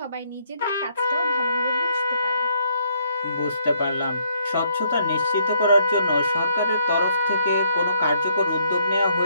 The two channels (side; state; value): both; inverted; correlation -0.71